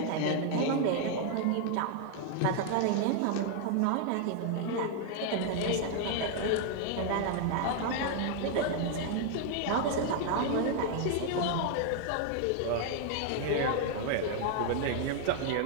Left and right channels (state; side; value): different; both; correlation 0.00